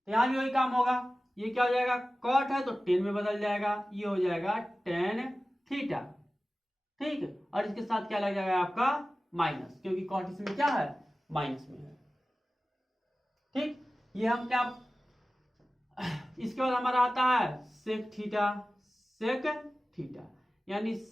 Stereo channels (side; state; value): both; normal; correlation 0.96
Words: यहां भी वही काम होगा, ये क्या हो जाएगा, कॉट है तो 10 में बदल जाएगा, ये हो जाएगा tan थीटा, ठीक। और इसके साथ क्या लग जाएगा आपका माइनस, क्योंकि कॉट इसमें क्या है, माइनस में है, ठीक। ये हम क्या, इसके बाद हमारा आता है सेक थीटा, सेक थीटा यानी